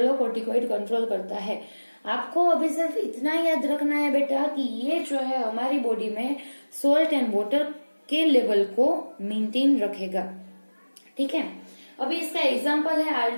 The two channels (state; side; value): inverted; both; correlation -1.00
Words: कंट्रोल करता है। आपको अभी सिर्फ इतना याद रखना है बेटा कि ये जो है हमारी बॉडी में सोल्ट एंड वाटर के लेवल को मेंटेन रखेगा, ठीक है। अभी इसका एग्जांपल है